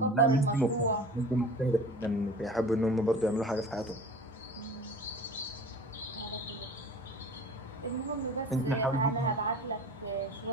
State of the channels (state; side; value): normal; both; correlation 0.40